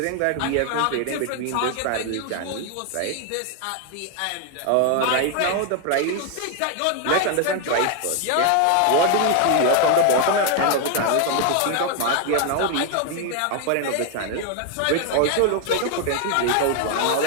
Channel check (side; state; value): both; different; correlation 0.01